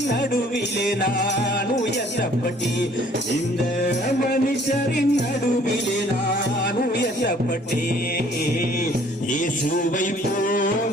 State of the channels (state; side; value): normal; both; correlation 0.58